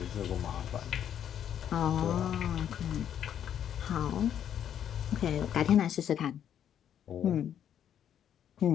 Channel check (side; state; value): right; quieter; 9.6 dB